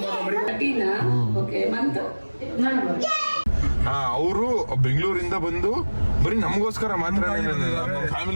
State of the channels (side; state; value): both; inverted; correlation -1.00